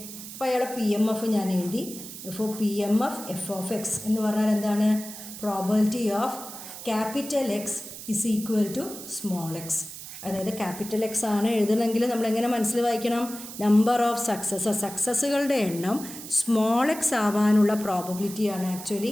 അപ്പോൾ അയാളെ പി എം എഫ് ഞാൻ എഴുതി. ഇപ്പോൾ P M F F of X എന്ന് പറഞ്ഞാൽ എന്താണ്? Probability of capital X is equal to small X. അതായത് capital X ആണ് എഴുതണമെങ്കിൽ നമ്മളെങ്ങനെ മനസ്സിൽ വായിക്കണം? നമ്പർ ഓഫ് സക്സസ്സുകളുടെ എണ്ണം സ്മോൾ എക്സ് ആവാനുള്ള പ്രോബബിലിറ്റിയാണ് ആക്ച്വലി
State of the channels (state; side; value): noise; right; hiss, 12 dB below the sound